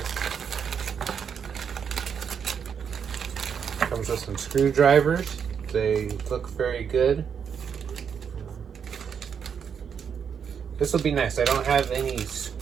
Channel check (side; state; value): left; quieter; 7.2 dB